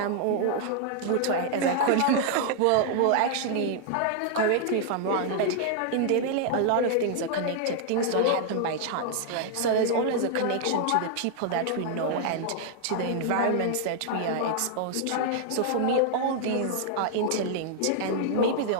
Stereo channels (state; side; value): different; both; correlation 0.00